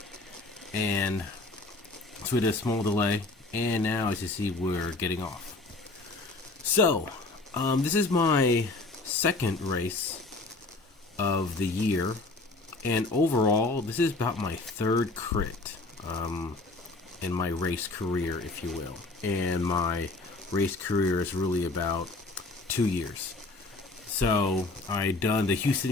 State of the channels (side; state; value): right; quieter; 3.3 dB